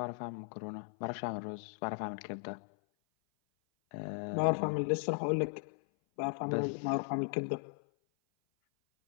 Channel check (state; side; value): silent; right; 53 dB below the other